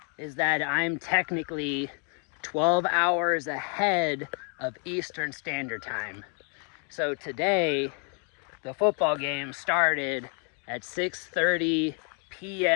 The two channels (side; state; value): right; quieter; 39.6 dB